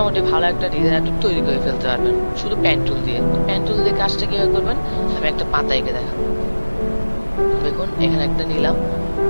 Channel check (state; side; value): inverted; both; correlation -1.00